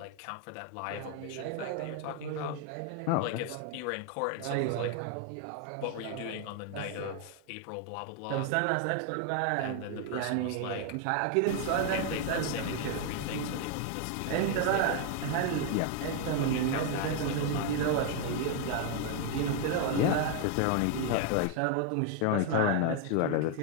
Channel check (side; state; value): both; different; correlation 0.01